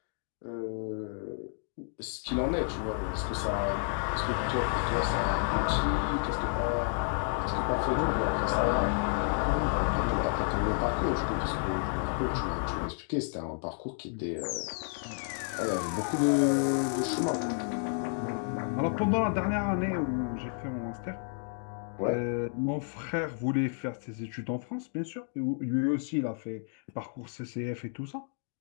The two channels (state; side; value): silent; right; 57 dB below the other